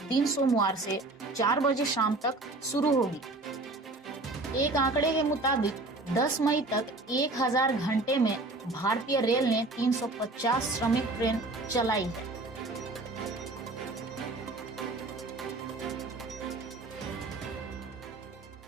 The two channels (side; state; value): left; quieter; 3.0 dB